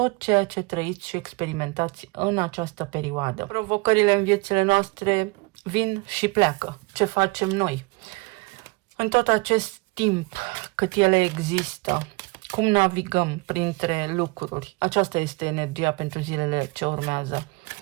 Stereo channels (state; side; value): quieter; left; 26.1 dB